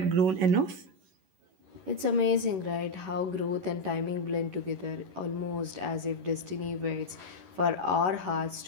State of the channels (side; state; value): left; late; 11 ms